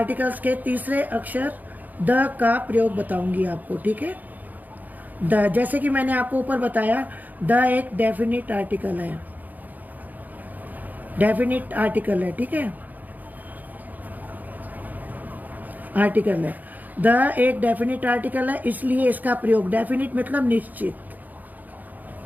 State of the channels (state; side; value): late; left; 0.082 ms